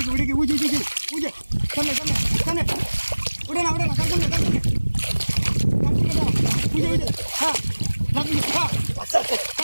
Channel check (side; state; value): both; inverted; correlation -1.00